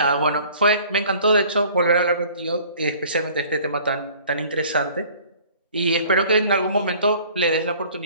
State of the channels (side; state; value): both; inverted; correlation -0.51